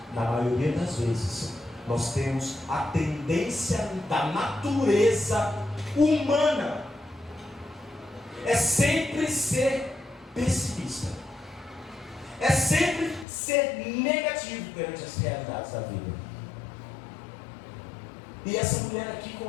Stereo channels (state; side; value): drops out; right; at 13.2 s